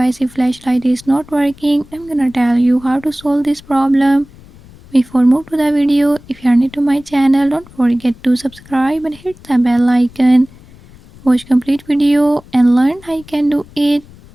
if flashlight is not working, I'm gonna tell you how to solve this problem. Before move to the video, if you are new to my channel, don't forget to subscribe and hit the bell icon. Watch complete video and learn how you can do it.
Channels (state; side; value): noise; left; rumble, 23 dB below the sound